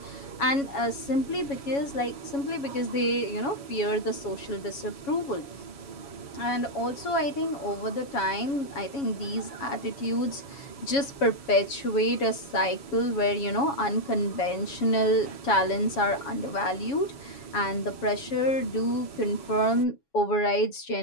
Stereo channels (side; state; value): right; late; 7.2 ms